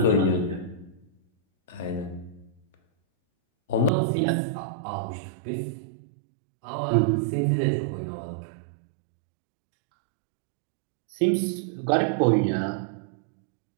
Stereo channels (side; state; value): left; drops out; at 3.9 s